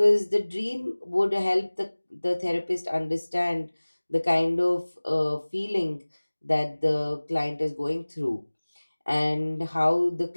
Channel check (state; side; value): inverted; both; correlation -1.00